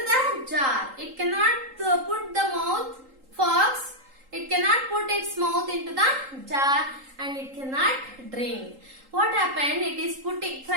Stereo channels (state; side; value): late; left; 3.8 ms